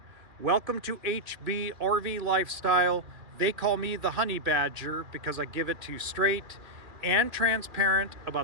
Welcome to HB RV Lifestyle. They call me the Honey Badger because I give it to you straight and transparent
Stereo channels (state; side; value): late; left; 2.4 ms